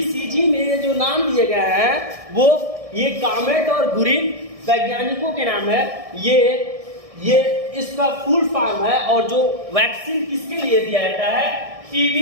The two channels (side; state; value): left; late; 1.6 ms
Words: में ये जो नाम दिए गए हैं वो ये कॉमेट और गुरिन वैज्ञानिकों के नाम है। ये इसका फुल फॉर्म है। और जो वैक्सीन किसके लिए दिया जाता है?